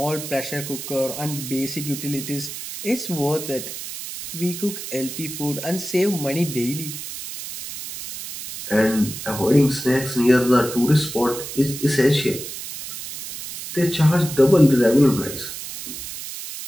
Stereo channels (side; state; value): right; noise; hiss, 9 dB below the sound